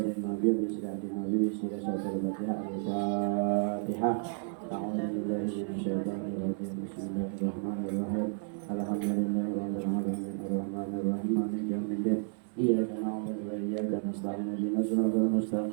Nabi, Bismillahirrahmanirrahim. Al-Fatihah. A'udzubillahi minasyaitonir rajim. Bismillahirrahmanirrahim. Alhamdulillahirabbil alamin. Arrahmanirrahim. Maliki yaumiddin. Iyyaka na'budu wa iyyaka nasta'in. Ihdinas siratal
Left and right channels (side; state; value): left; silent; 57 dB below the other